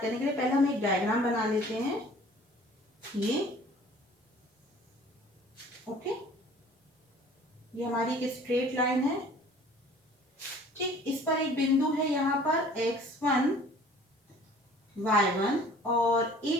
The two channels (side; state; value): both; normal; correlation 0.50